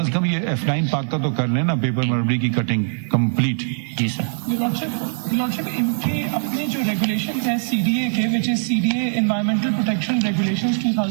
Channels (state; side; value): silent; left; digital silence